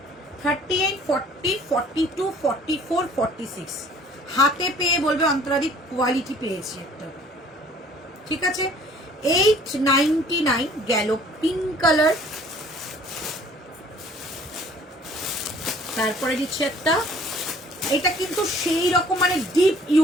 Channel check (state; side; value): normal; both; correlation 0.54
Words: 38, 40, 42, 44, 46 হাতে পেয়ে বলবে অন্তরাদি কোয়ালিটি পেয়েছি একটা, ঠিক আছে। 899 গেল পিঙ্ক কালার। তারপরে দিচ্ছে একটা, এটা কিন্তু সেই রকম মানে ডিপ